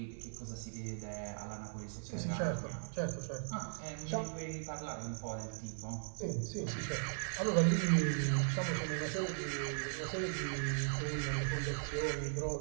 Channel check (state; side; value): silent; left; digital silence